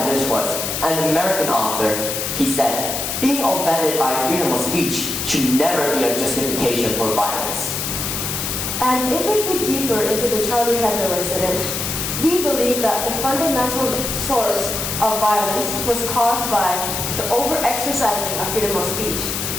Dershowitz, an American author. He said, "Being offended by freedom of speech should never be a justification for violence." And if we dig deeper into the Charlie Hebdo incident, we believe that the fundamental source of violence was caused by the over-exercising of freedom of speech.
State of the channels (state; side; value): noise; left; hiss, 3 dB below the sound